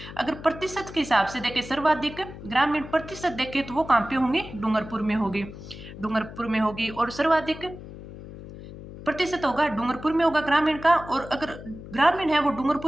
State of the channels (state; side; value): noise; left; hum, 14 dB below the sound